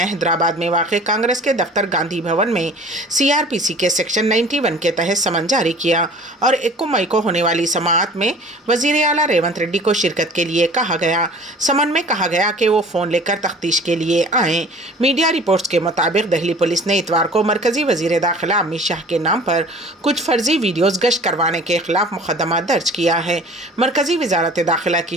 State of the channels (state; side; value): normal; both; correlation 0.46